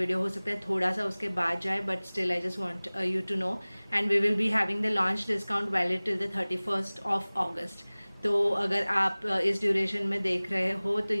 हो सकता है थोड़ा सा उसके बाद जाए, but still I just want you to know. And we will be having the launch discount valid till the 31st of August. तो अगर आप इस ड्यूरेशन में देख रहे हो तो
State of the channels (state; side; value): inverted; both; correlation -1.00